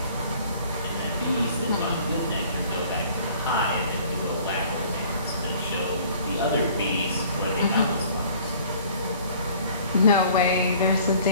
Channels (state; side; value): inverted; both; correlation -0.53